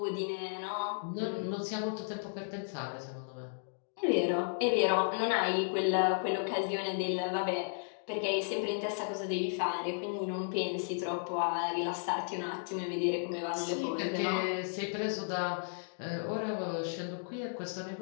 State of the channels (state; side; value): silent; right; digital silence